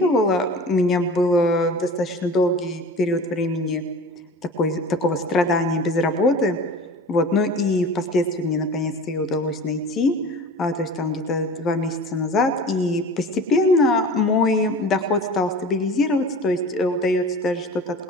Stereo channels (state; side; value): normal; both; correlation 0.38